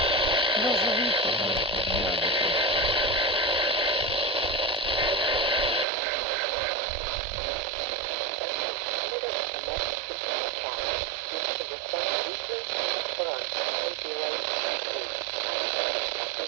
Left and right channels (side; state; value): left; drops out; at 5.9 s